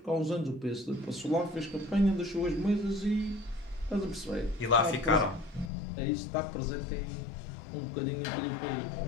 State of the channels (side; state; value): right; drops out; at 5.7 s